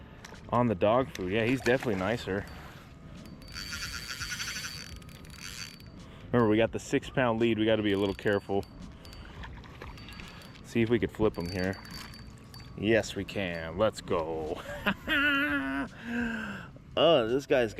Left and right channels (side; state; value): both; identical; correlation 1.00